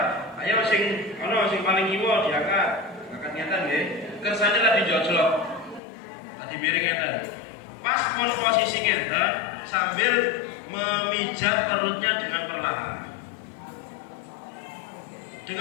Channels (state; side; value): drops out; right; at 5.8 s